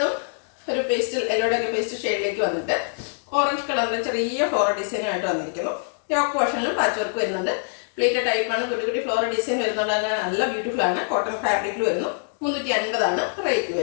ഒരു യെല്ലോടെയൊക്കെ പേസ്റ്റ് ഷെയ്ഡിലേക്ക് വന്നിട്ട് ഓറഞ്ച് കളറിന്റെ ചെറിയ ഫ്ലോറൽ ഡിസൈനുമായിട്ട് വന്നിരിക്കുന്നു. യോക്ക് പോർഷനിലും പാച്ച് വർക്ക് വരുന്നുണ്ട്. പ്ലീറ്റഡ് ടൈപ്പാണ്. കുട്ടി ഫ്ലോറൽ ഡിസൈൻ വരുന്നുണ്ട്. അങ്ങനെ നല്ല ബ്യൂട്ടിഫുൾ ആണ്. കോട്ടൺ ഫാബ്രിക്കിൽ വരുന്നു. 350 റേറ്റ്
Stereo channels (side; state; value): right; silent; digital silence